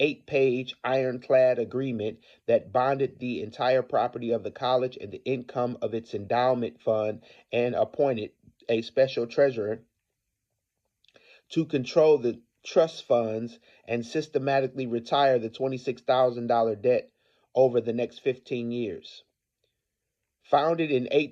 ironclad agreement that bonded the entire property of the college and the income of its endowment fund and appointed a special treasurer to control the trust funds and systematically retire the $26,000 debt over the next 15 years. Founded in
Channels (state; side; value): identical; both; correlation 1.00